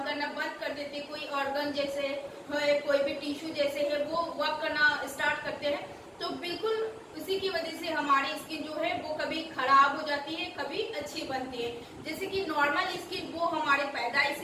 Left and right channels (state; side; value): identical; both; correlation 1.00